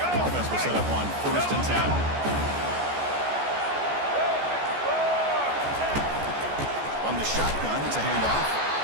Offense will set up on 1st and 10. From the shotgun, it's a handoff.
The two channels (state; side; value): late; left; 14 ms